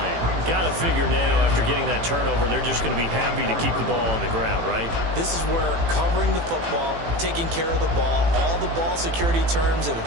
Got to figure now, after getting that turnover, they're just going to be happy to keep the ball on the ground, right? This is where covering the football, taking care of the ball, all the ball security terms that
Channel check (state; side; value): late; left; 18 ms